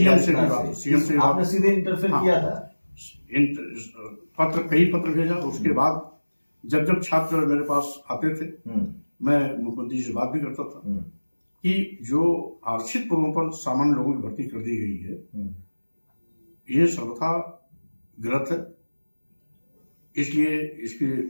से आपने सीधे इंटरफेयर किया था? कई पत्र भेजा। उसके बाद जब छात्र मेरे पास आते थे मैं मुख्यमंत्री से बात भी करता था कि जो आरक्षित पदों पर सामान्य लोगों की भर्ती कर दी गई है ये सर्वथा गलत है, इसलिए इसके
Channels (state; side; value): inverted; both; correlation -1.00